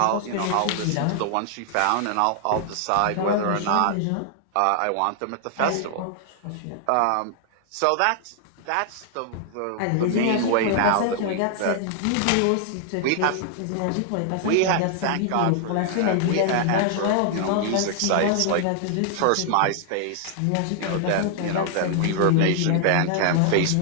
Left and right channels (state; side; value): different; both; correlation 0.00